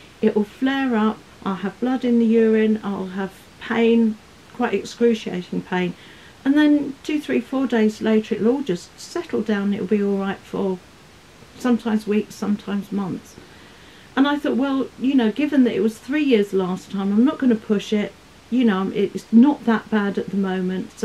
It will flare up, I'll have blood in the urine, I'll have pain, quite excruciating pain. And then 2, 3, 4 days later, it'll all just settle down. It'll be all right for sometimes weeks, sometimes months. And I thought, well, you know, given that it was 3 years last time, I'm not going to push it. You know, it's not that bad at the moment,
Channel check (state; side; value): identical; both; correlation 1.00